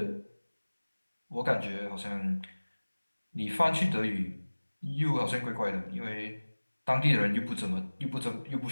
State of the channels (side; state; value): both; inverted; correlation -1.00